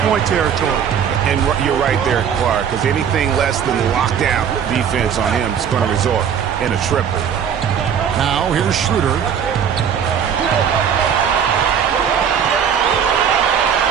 territory. And you're right there, Clark, because anything less than lockdown defense on him is going to result in a triple. Now here's Schroeder.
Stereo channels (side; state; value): left; quieter; 8.0 dB